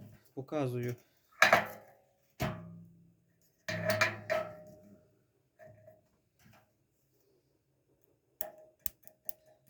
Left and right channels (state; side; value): identical; both; correlation 1.00